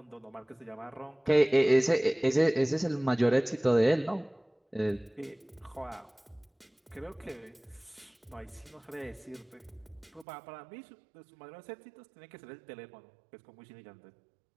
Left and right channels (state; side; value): drops out; left; at 10.2 s